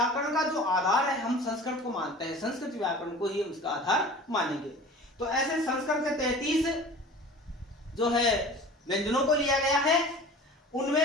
का जो आधार है हम संस्कृत को मानते हैं, संस्कृत व्याकरण को ही उसका आधार मानेंगे। तो ऐसे संस्कृत के 33 जो है व्यंजनों को लिया गया है।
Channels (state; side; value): normal; both; correlation 0.41